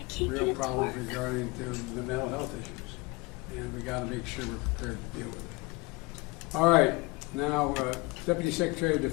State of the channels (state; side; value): quieter; right; 24.7 dB